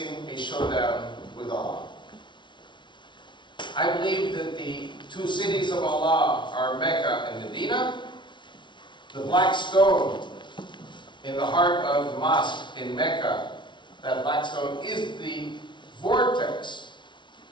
a showdown with Allah. I believe that the two cities of Allah are Mecca and Medina. The black stone in the heart of the mosque in Mecca, that black stone is the vortex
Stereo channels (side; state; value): right; late; 0.23 ms